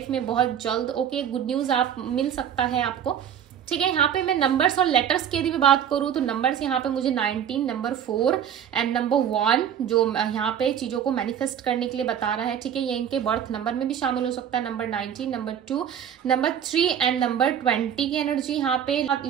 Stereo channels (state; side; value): quieter; left; 9.1 dB